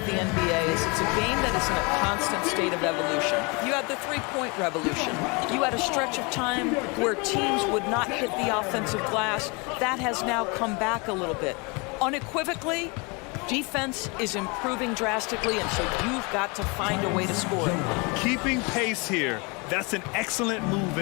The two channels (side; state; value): right; quieter; 29.5 dB